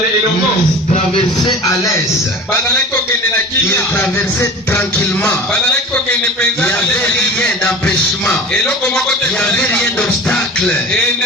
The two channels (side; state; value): both; normal; correlation 0.37